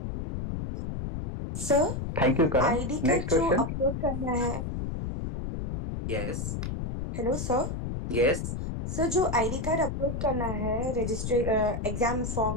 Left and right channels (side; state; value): left; noise; rumble, 4 dB below the sound